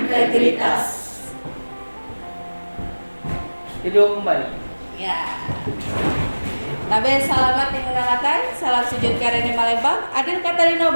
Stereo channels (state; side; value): inverted; both; correlation -1.00